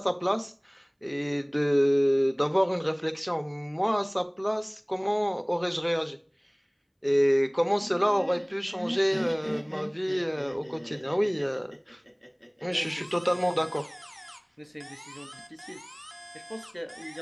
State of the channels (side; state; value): both; identical; correlation 1.00